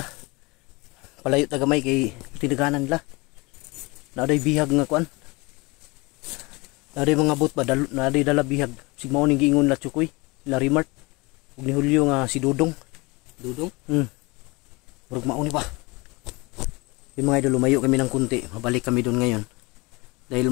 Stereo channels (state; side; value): quieter; right; 25.3 dB